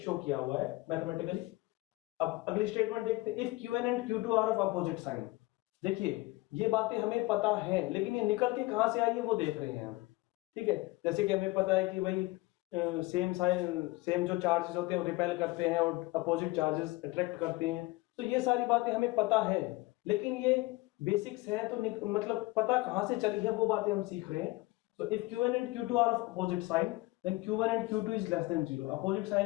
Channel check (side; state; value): right; quieter; 21.5 dB